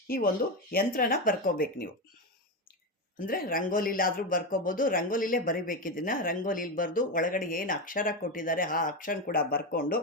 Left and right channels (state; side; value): normal; both; correlation 0.14